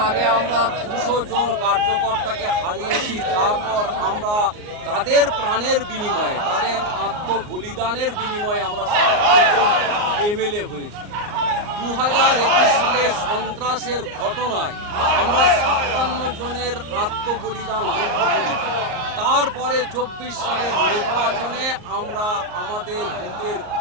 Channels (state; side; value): late; left; 38 ms